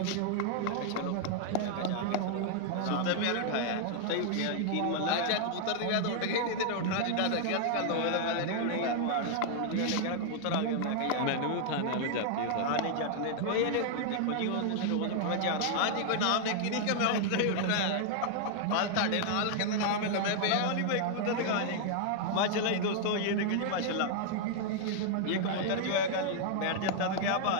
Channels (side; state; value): both; different; correlation 0.00